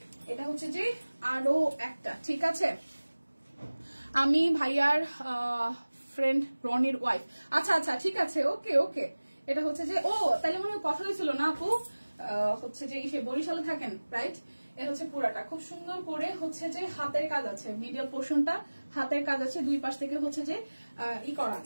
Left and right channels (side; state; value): both; inverted; correlation -1.00